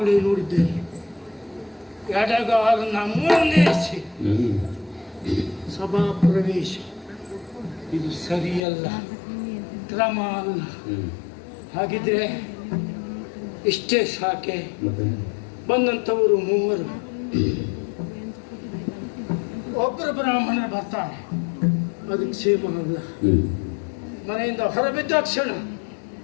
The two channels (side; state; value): right; drops out; at 8.6 s